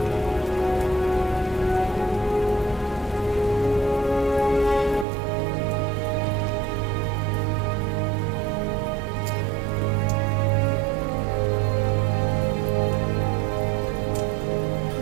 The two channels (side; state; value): left; drops out; at 5.1 s